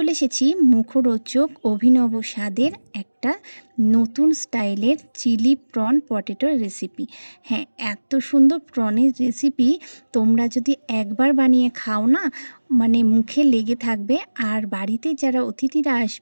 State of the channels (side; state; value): both; inverted; correlation -1.00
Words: এসেছি মুখরোচক অভিনব স্বাদের একটা নতুন স্টাইলের চিলি প্রন পটেটোর রেসিপি। হ্যাঁ, এত সুন্দর প্রনের রেসিপি তোমরা যদি একবার বানিয়ে খাও না, মানে মুখে লেগে থাকবে। আর বাড়িতে যারা অতিথিরা